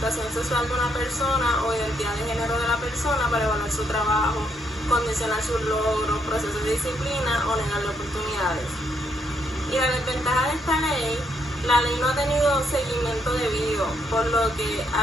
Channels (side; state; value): both; normal; correlation 0.74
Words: sexual de una persona o identidad de género de la persona para evaluar su trabajo, condicionar sus logros, procesos de disciplina o negarle oportunidades. Y la desventaja de esta ley: la ley no ha tenido seguimiento debido, por lo que